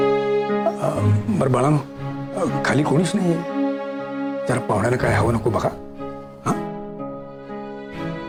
बरं बाळांनो, खाली कोणीच नाहीये. जरा पाहुण्याला काय हवं नको बघा. हा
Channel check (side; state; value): both; identical; correlation 1.00